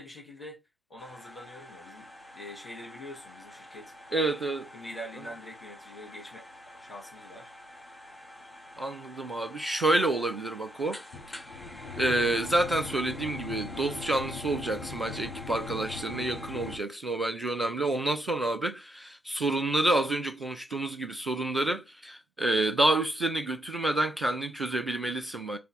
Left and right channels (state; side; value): normal; both; correlation 0.77